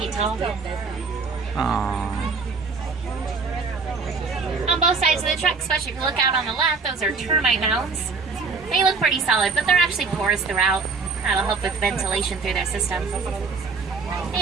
tall. Aww. On both sides of the truck, especially if you look out on the left, those are termite mounds. They look pretty solid, but they're actually porous throughout. That'll help with ventilation through their system.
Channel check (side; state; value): left; quieter; 4.7 dB